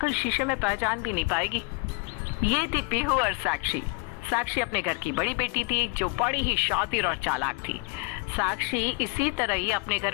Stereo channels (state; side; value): quieter; right; 30.1 dB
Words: शीशे में पहचान भी नहीं पाएगी। ये थी पीहू और साक्षी। साक्षी अपने घर की बड़ी बेटी थी जो बड़ी ही शातिर और चालाक थी। साक्षी इसी तरह ही अपने